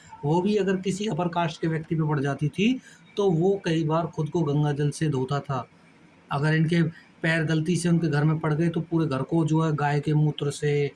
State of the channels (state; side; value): identical; both; correlation 1.00